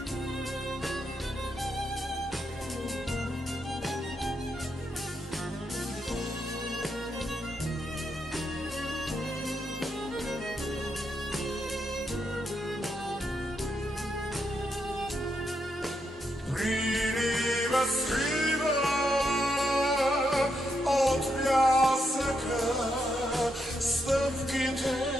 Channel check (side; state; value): both; normal; correlation 0.81